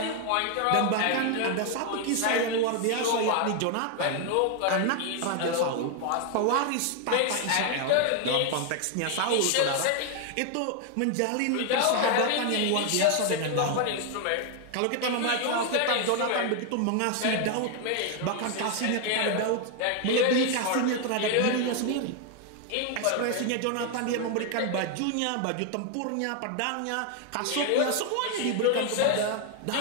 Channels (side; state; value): both; different; correlation 0.01